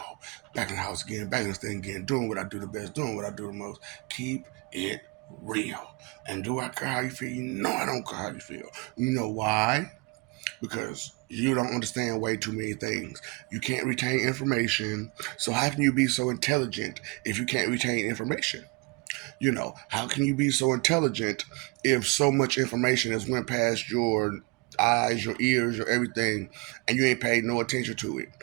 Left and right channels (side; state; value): left; quieter; 27.7 dB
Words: Back in the house again, back in this thing again, doing what I do the best, doing what I do the most. Keep it real. And do I care how you feel? No, I don't care how you feel. You know why? Because you don't understand way too many things. You can't retain information. So how can you be so intelligent if you can't retain information? How can you be so intelligent if so much information has went past your eyes, your ears, your everything, and you ain't paid no attention to it?